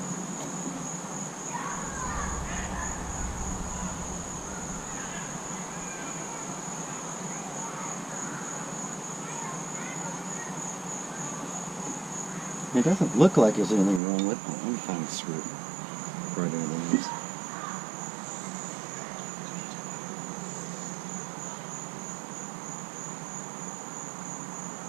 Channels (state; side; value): drops out; left; at 14.0 s